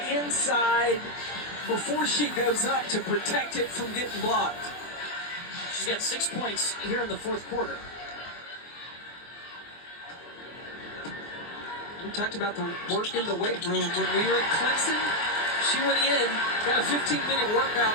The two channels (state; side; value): late; right; 24 ms